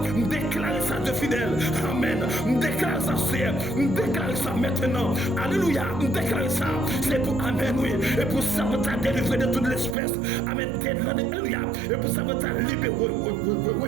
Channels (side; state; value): left; drops out; at 10.0 s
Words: Me déclarer ça de fidèle. Amen. Me déclarer ça. C'est. Me déclarer ça maintenant. Alléluia. Me déclarer ça. C'est pour. Amen. Oui. Et pour ça, vous t'a délivré de toute l'espèce. Amen. Alléluia. Et pour ça, vous t'a libéré.